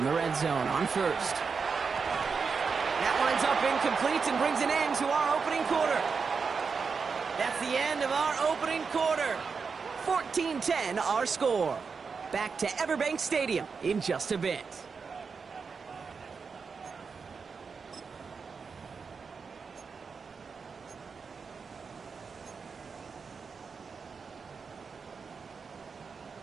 the red zone on first. That winds up incomplete and brings an end to our opening quarter. That's the end of our opening quarter. 14-10 our score. Back to Everbank Stadium in just a bit.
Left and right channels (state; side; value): quieter; left; 5.3 dB